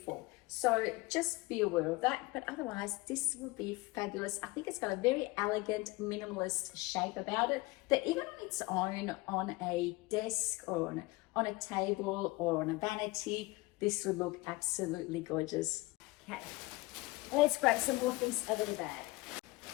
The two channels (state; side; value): quieter; right; 22.0 dB